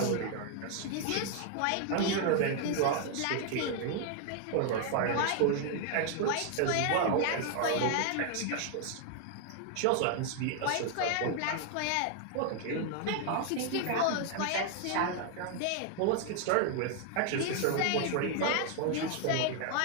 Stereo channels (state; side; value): different; both; correlation 0.00